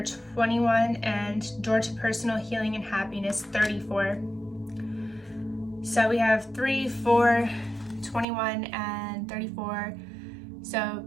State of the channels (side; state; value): left; drops out; at 8.2 s